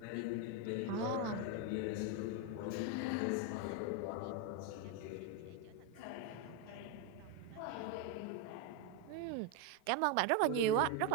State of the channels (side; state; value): both; different; correlation 0.02